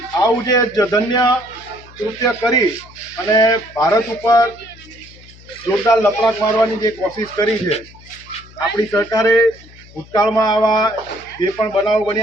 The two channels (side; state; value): left; noise; hum, 23 dB below the sound